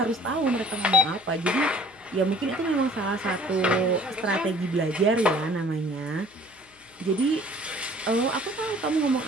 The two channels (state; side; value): noise; left; hum, 29 dB below the sound